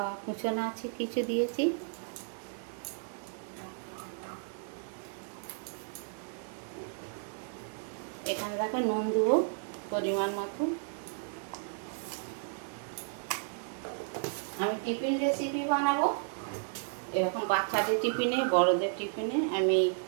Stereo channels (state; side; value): silent; left; digital silence